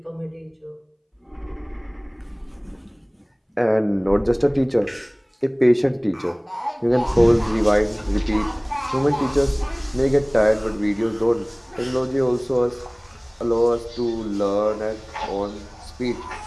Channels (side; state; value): both; identical; correlation 1.00